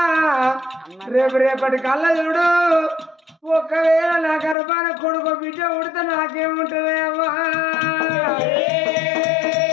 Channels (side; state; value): right; drops out; at 4.5 s